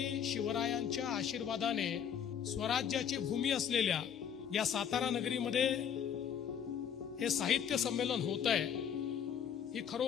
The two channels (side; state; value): right; quieter; 8.3 dB